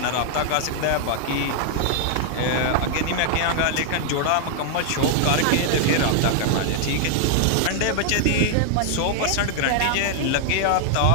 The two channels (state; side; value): different; both; correlation 0.00